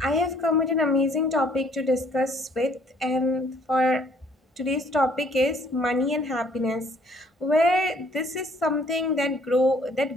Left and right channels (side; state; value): both; normal; correlation 0.61